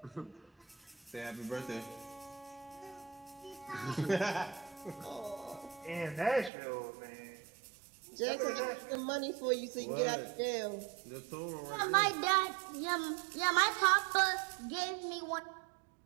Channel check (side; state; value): left; drops out; at 6.5 s